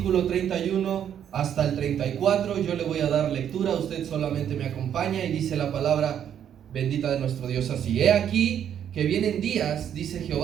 31 hasta el 34. Yo le voy a dar lectura, usted solamente me acompaña y dice la palabra bendita de nuestro Dios así: He aquí que vienen días, dice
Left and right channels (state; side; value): quieter; left; 9.3 dB